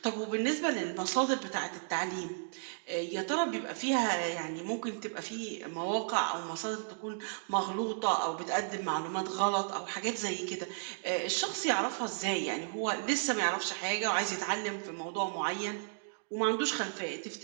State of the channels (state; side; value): silent; left; digital silence